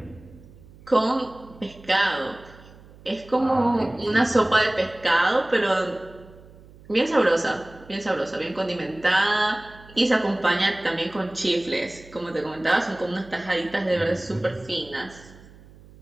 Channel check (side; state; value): right; noise; hum, 22 dB below the sound